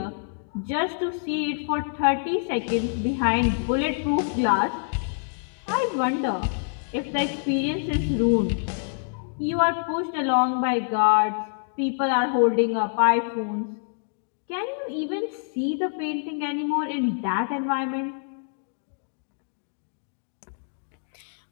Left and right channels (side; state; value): right; silent; digital silence